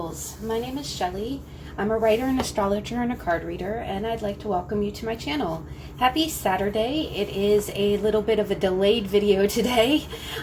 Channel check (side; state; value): both; identical; correlation 1.00